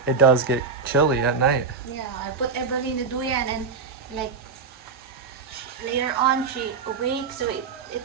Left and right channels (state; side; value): quieter; left; 5.1 dB